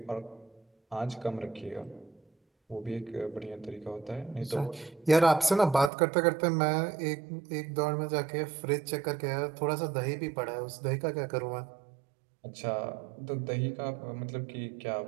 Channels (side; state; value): left; drops out; at 5.9 s